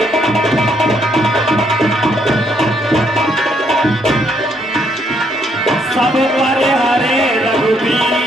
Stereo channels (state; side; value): normal; both; correlation 0.71